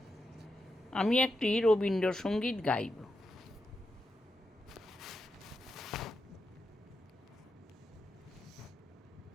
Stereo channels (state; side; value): normal; both; correlation 0.87